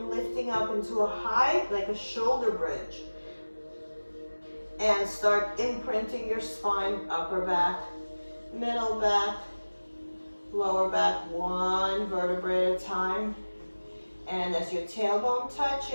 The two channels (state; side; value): inverted; both; correlation -1.00